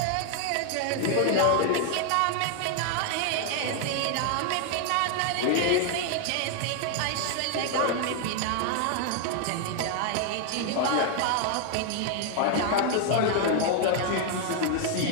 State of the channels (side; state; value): both; different; correlation 0.00